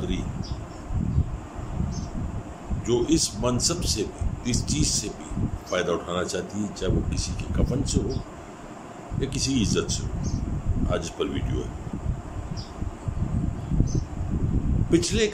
جو اس منصب سے بھی، اس چیز سے بھی فائدہ اٹھانا چاہتی ہے، چاہے وہ کسی کے کفن سے ہو یا کسی کی عزت سے ہو۔ آج اس پر ویڈیو ہے۔ پچھلے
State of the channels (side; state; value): both; identical; correlation 1.00